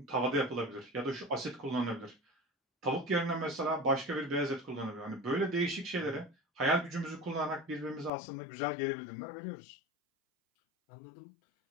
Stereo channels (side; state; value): right; drops out; at 8.1 s